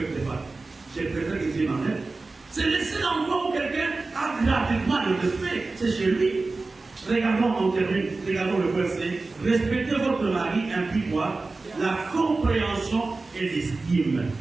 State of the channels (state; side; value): quieter; left; 3.6 dB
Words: pas. Je préfère que Dieu m'en aide. C'est le seul endroit où quelqu'un a gratuitement le respect, c'est chez lui. Regardons, on termine, regardons le verset. Respectez votre mari implique quoi? La compréhension et l'estime.